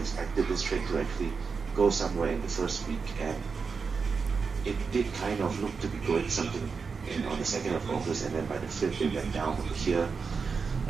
this trade to actually go somewhere in the first week, and it did kind of look to be going something on the 2nd of August, and then by the 5th it went down over here.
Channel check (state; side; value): quieter; left; 5.2 dB